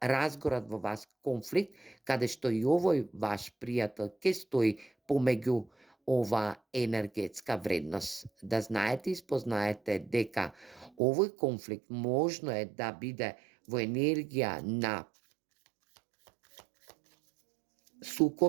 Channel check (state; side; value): drops out; left; at 10.9 s